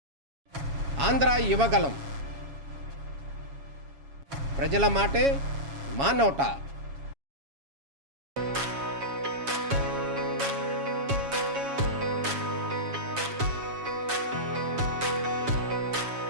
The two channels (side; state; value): left; late; 7.2 ms